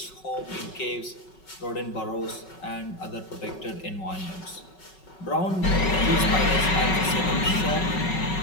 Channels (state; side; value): late; right; 5.3 ms